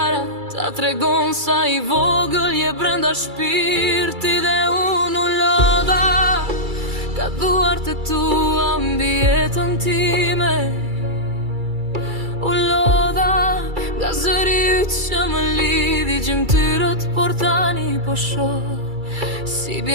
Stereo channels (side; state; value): left; late; 2.3 ms